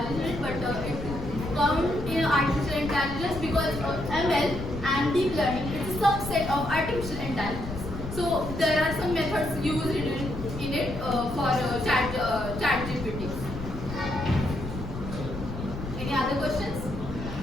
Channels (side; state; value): left; noise; rumble, 8 dB below the sound